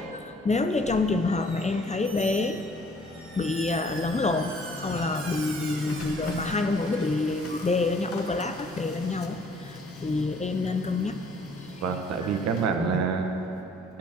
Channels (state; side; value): normal; both; correlation 0.58